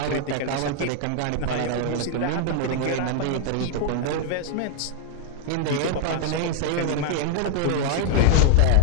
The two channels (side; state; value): both; different; correlation 0.00